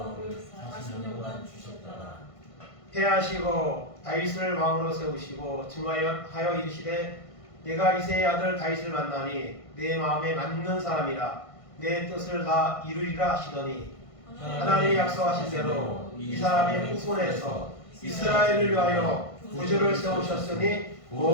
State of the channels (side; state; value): right; late; 1.5 ms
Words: 40년간 주셨더라. 패하시고 다윗을 왕으로 세우시고 증하여 이르시되 내가 이새의 아들 다윗을 만나니 내 마음에 맞는 사람이라 내 뜻을 다 이루리라 하시더니 하나님이 약속하신 대로 이 사람의 후손에서 이스라엘을 위하여 구주를 세우셨으니